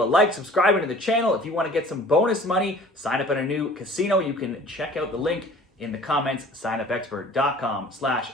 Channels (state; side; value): normal; both; correlation 0.48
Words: a like, subscribing to the channel. If you want to get some bonus money, sign up at a new casino. You can check out the link in the comments,